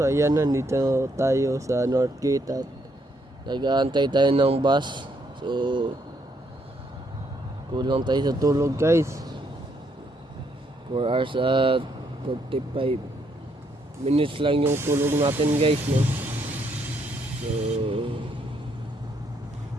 ayan, nandito tayo sa North Gate at nag-aantay tayo ng bus. So kulang tayo sa tulog guys. 4 hours at 45 minutes lang yung tulog natin guys, no? So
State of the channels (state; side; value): normal; both; correlation 0.73